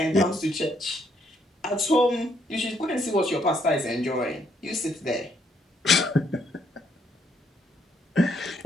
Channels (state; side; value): normal; both; correlation 0.72